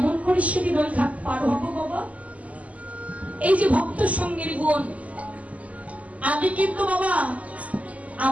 করে সেদিন ওই ঘাট পার হবো বাবা? এই যে ভক্ত সঙ্গের গুণ, আগে কিন্তু বাবা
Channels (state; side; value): late; left; 0.070 ms